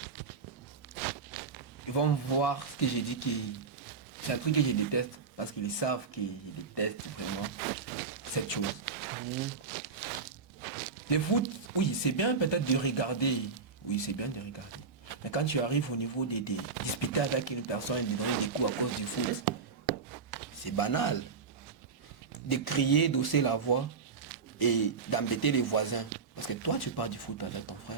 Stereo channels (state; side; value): quieter; left; 5.2 dB